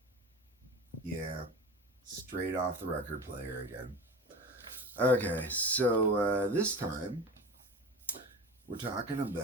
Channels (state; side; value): normal; both; correlation 0.32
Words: Yeah, straight off the record player again. Okay, so this time we're talking